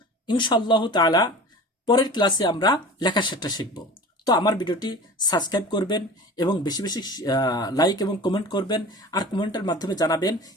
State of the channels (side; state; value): both; normal; correlation 0.38